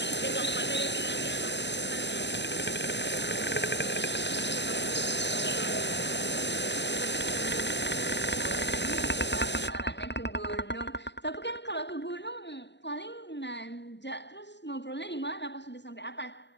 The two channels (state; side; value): late; right; 0.51 ms